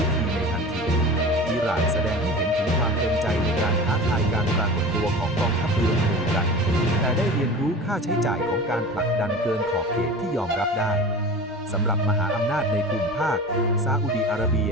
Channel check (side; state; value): both; normal; correlation 0.35